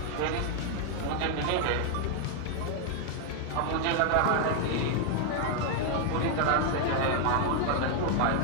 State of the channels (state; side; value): different; both; correlation 0.00